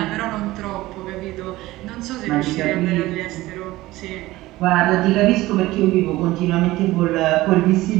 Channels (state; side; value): quieter; left; 17.9 dB